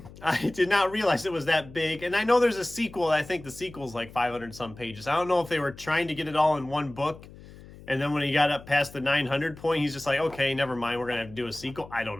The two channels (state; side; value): noise; left; hum, 18 dB below the sound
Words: I did not realize it was that big. And I know there's a sequel. I think the sequel's like 500 some pages. I don't know if they were trying to get it all in one book. And then when he got up past the 900 point, he's just like, okay, never mind. We're going to have to do a sequel. I don't